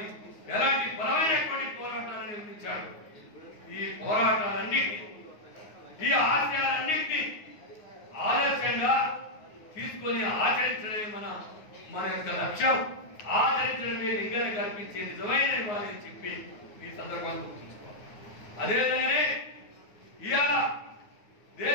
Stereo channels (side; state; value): right; late; 9.6 ms